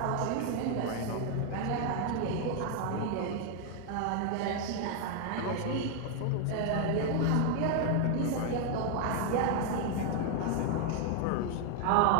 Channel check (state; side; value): different; both; correlation 0.00